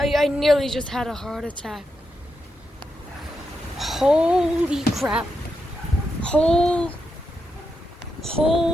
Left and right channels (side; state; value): both; normal; correlation 0.85